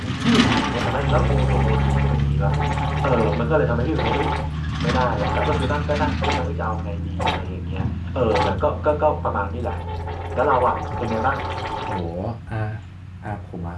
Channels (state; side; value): identical; both; correlation 1.00